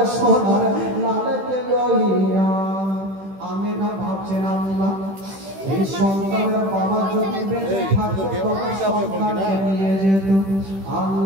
সোনার লালকে লইয়া। আমি না ভাবছেন আল্লাহ এই সন্তানের বাবা যদি বেঁচে থাকতো তবে সন্তানকে নিয়ে যেত।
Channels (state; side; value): late; left; 15 ms